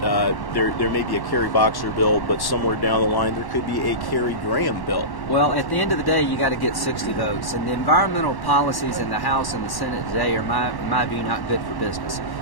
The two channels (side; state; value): right; late; 1.1 ms